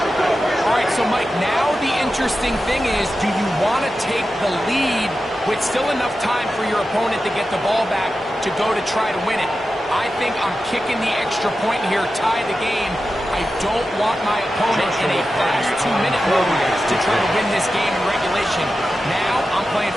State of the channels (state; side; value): normal; both; correlation 0.92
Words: All right, so Mike, now the interesting thing is, do you want to take the lead with still enough time for your opponent to get the ball back to go to try to win it? I think I'm kicking the extra point here, tie the game. I don't want my opponent in a fast 2-minute mode to try to win this game in regulation. Now I'm playing